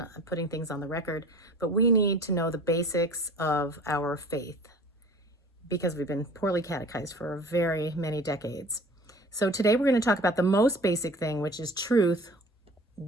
I'm putting things on the record, but we need to know the basics of our faith because we've been poorly catechized for very many decades. So today we're going to talk about the most basic thing, which is truth.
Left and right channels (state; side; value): normal; both; correlation 0.45